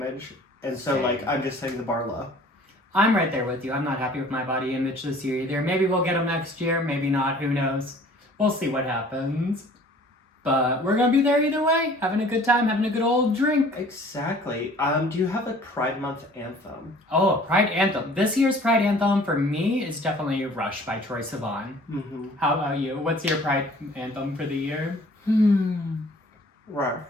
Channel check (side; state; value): both; normal; correlation 0.51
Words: And so, Same. like, I'm just setting the bar low. I'm right there with you. I'm not happy with my body image this year either. Maybe we'll get them next year. Maybe not. Who knows? We'll see what happens. But we're going to be there either way. Having a good time. Having a good old drink. Exactly. Do you have a Pride Month anthem? Oh, a Pride anthem. This year's Pride anthem for me is definitely Rush by Troye Sivan. Mm-hmm. How about you? What's your Pride anthem for the year? Right.